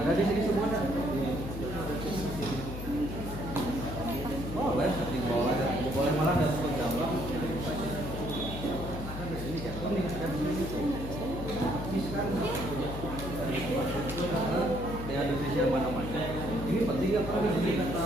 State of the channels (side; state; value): left; noise; hum, 8 dB below the sound